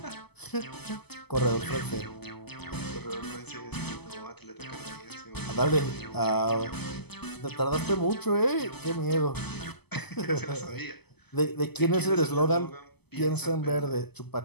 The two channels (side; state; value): right; late; 0.98 ms